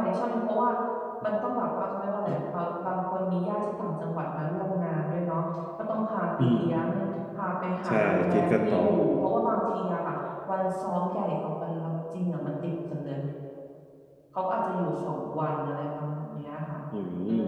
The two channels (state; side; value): identical; both; correlation 1.00